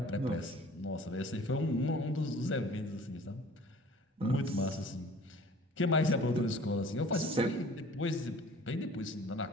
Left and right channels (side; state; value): both; normal; correlation 0.48